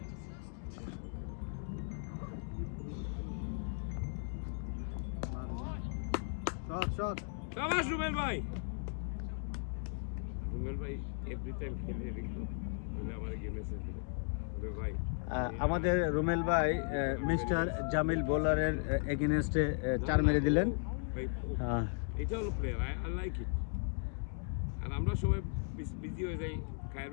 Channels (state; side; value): silent; right; 53 dB below the other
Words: শট শাবাশ রুবেল ভাই এভরি টাইম খেলে রিঙ্কু বলে আমার গেমে সেভ দিলে রুবেল ভাই আমাদের রুমেল ভাই মিস্টার জামিল বোলারের এগেইনস্টে 4 মেরে দিলেন এটা হলো প্লেয়ার আই লাইক ইট আর আমরা সবাই বিজি হয়ে যাই, খায়ের